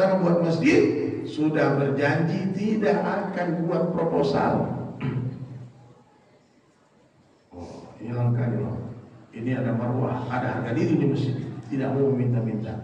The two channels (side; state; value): both; identical; correlation 1.00